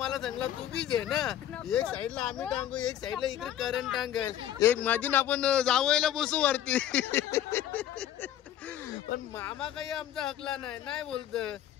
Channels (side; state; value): right; quieter; 11.4 dB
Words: सांगला तू बी घे ना. एक साईडला आम्ही टांगू, एक साईडला इकडे करंट टांगेल, एक मधीन आपण जावयाला बसू वरती. पण मामा काही आमचा हकला नाही बोलत